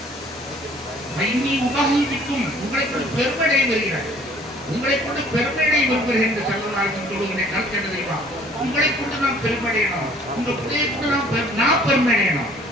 உங்களை கொண்டு பெருமையை வருகிறார், உங்களை கொண்டு பெருமையை வருகிறேன் என்று சொல்வதாக சொல்லுகிறேன். கருத்து என்ன தெரியுமா? உங்களை கொண்டு நாம் பெருமையடையணும், உங்க பிள்ளையை கொண்டு நான் பெருமையடையணும்.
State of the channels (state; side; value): normal; both; correlation 0.55